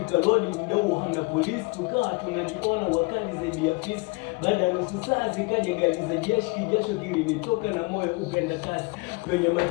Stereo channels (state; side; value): quieter; right; 27.5 dB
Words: lodi mdogo hamna polisi, tukawa tunajiona wakali zaidi ya fisi. Baada ya nusu saa zikaja gari za jeshi, kijasho kilinitoka na moyo upenda kasi. Kwenye